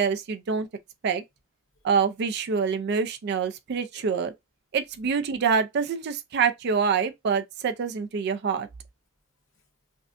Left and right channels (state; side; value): quieter; left; 5.6 dB